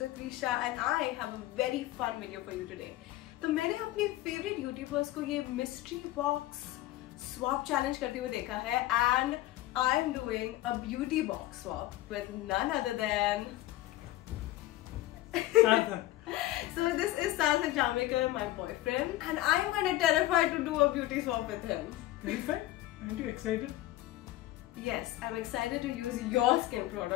Ritvi, Shah and I have a very fun video for you today. तो मैंने अपने favorite YouTubers को ये mystery box swap challenge करते हुए देखा है and I am doing a beauty box swap with none other than Sarthak. So this is Sarthak Jamaica, my boyfriend, and I am kind of terrified to do a beauty swap with him. Terrified? Aren't you excited? Yes, I'm excited to use your skin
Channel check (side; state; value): right; quieter; 16.0 dB